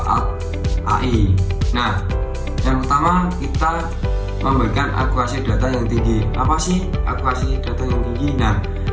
AI. Nah, yang pertama kita memberikan akurasi data yang tinggi. Apa sih akurasi data yang tinggi? Nah,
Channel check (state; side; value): identical; both; correlation 1.00